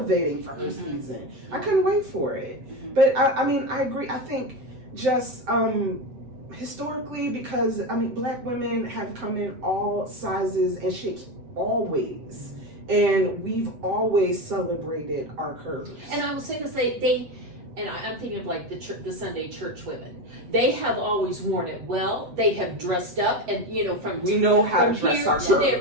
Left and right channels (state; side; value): late; left; 7.9 ms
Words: for her season. I couldn't wait for it. But I agree. I think just historically, because Black women have come in all sizes and shapes always, and we've always celebrated our curves. And I will say this: I'm thinking of like the Sunday church women. They have always worn it well. They have dressed up, and we know how to dress our